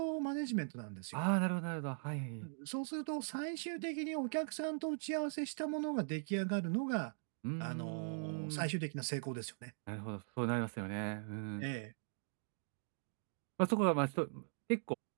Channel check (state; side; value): silent; left; digital silence